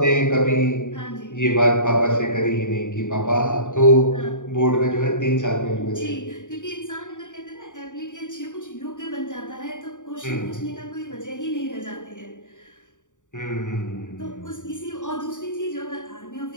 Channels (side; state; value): right; late; 0.86 ms